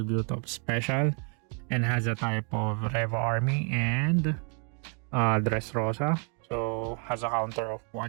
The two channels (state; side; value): quieter; left; 39.3 dB